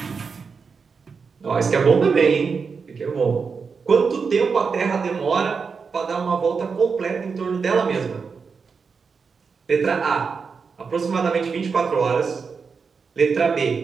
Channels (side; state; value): left; quieter; 5.4 dB